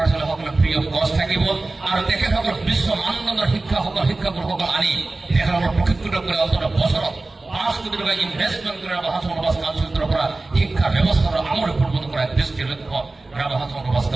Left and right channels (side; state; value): left; quieter; 3.2 dB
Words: ছোৱালীসকলে ফ্ৰী অফ কষ্ট থাকিব আৰু তেখেতসকল বিশ্ব মানদণ্ডৰ শিক্ষাগুৰুসকল আনি তেখেতসকলক প্ৰশিক্ষিত কৰি অন্তত বছৰত 5 কোটি টকা ইনভেষ্টমেণ্ট কৰি ৰাভা হাছান সমাজ কাউন্সিলৰ পৰা শিক্ষা ব্যৱস্থাৰ আমূল পৰিৱৰ্তন কৰাৰ দৃষ্টিৰ লক্ষ্য ৰাভা হাছান সমাজ